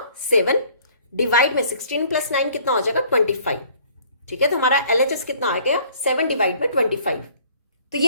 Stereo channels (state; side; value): inverted; both; correlation -0.57